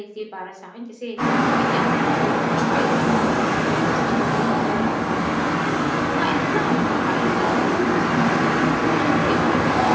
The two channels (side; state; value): both; identical; correlation 1.00